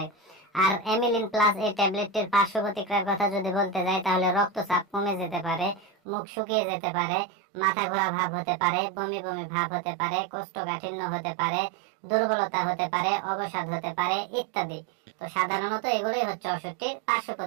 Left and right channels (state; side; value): drops out; left; at 5.9 s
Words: আর অ্যামিলিন প্লাস এই ট্যাবলেটটির পার্শ্ব প্রতিক্রিয়ার কথা যদি বলতে যাই তাহলে রক্তচাপ কমে যেতে পারে, মুখ শুকিয়ে যেতে পারে, মাথা ঘোরা ভাব হতে পারে, বমি বমি ভাব হতে পারে, কোষ্ঠকাঠিন্য হতে পারে, দুর্বলতা হতে পারে, অবসাদ হতে পারে ইত্যাদি। তো সাধারণত এগুলোই হচ্ছে ওষুধটির পার্শ্ব